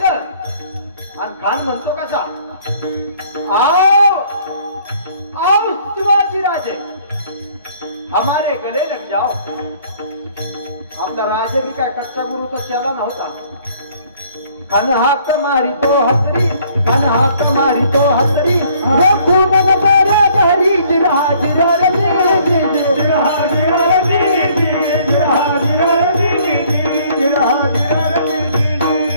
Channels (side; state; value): both; inverted; correlation -0.60